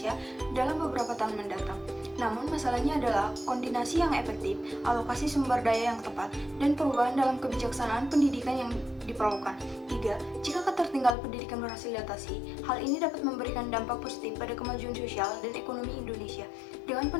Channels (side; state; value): right; drops out; at 11.2 s